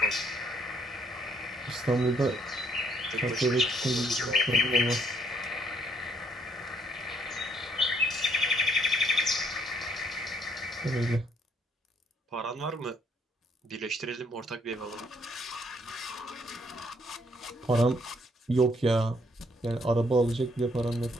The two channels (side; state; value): both; normal; correlation 0.68